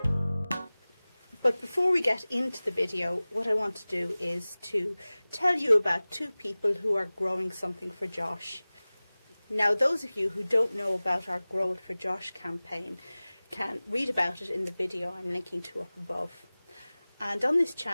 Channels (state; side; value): inverted; both; correlation -0.99